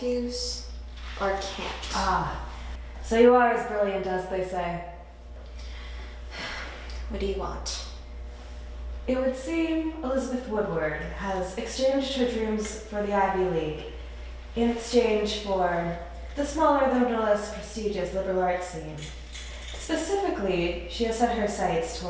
or can't? Ah, so you are as brilliant as they say. What do you want? It would seem Elizabeth Woodward has exchanged her dreams for the Ivy League in exchange for the smaller though no less prestigious liberal arts scene. Specifically, she has set her sights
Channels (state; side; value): identical; both; correlation 1.00